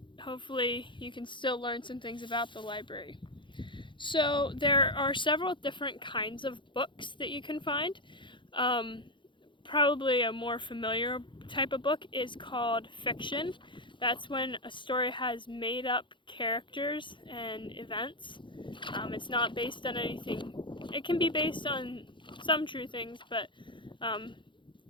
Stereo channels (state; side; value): late; right; 0.23 ms